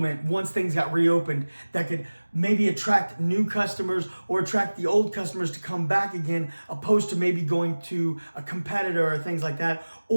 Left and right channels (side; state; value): both; inverted; correlation -1.00